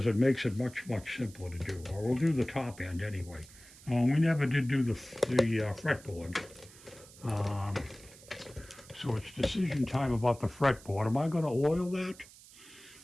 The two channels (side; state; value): right; noise; hiss, 21 dB below the sound